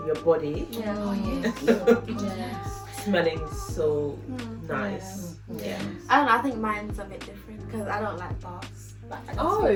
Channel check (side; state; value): both; identical; correlation 1.00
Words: your body, Yeah. Yes. smelling so nice. Yeah. I don't know. I think mine's a bit different because I don't like baths. Like, I just Oh, feel